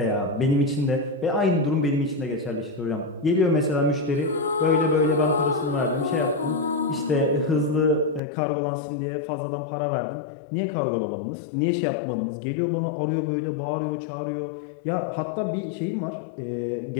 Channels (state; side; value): drops out; right; at 8.2 s